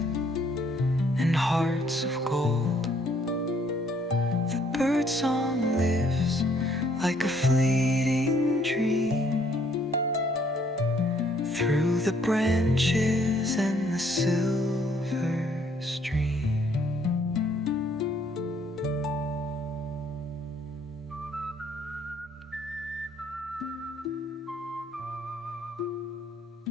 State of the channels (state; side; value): normal; both; correlation 0.65